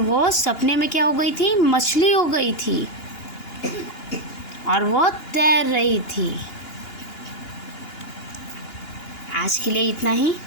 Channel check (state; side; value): late; right; 2.8 ms